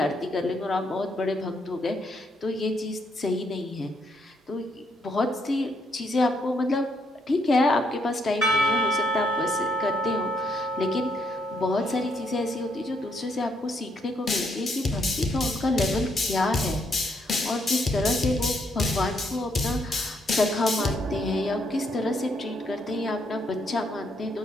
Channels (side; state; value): both; normal; correlation 0.74